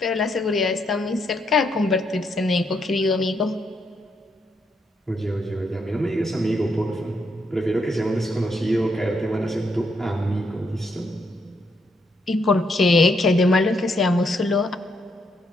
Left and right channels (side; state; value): both; normal; correlation 0.76